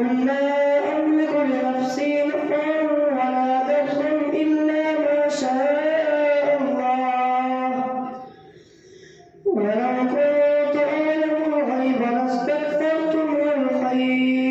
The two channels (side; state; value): both; identical; correlation 1.00